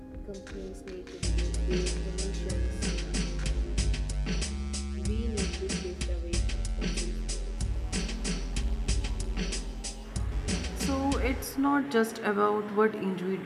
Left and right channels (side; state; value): both; identical; correlation 1.00